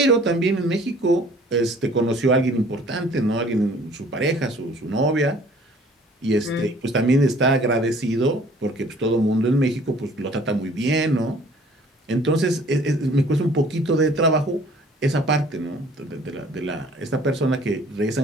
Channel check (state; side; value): normal; both; correlation 0.53